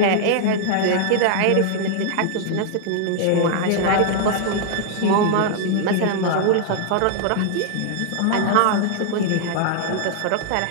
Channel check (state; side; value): different; both; correlation -0.01